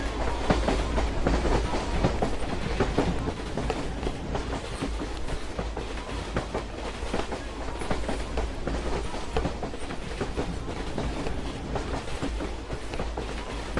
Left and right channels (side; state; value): both; identical; correlation 1.00